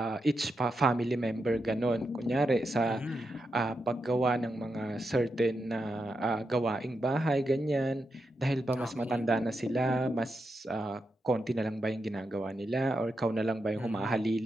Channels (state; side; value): normal; both; correlation 0.86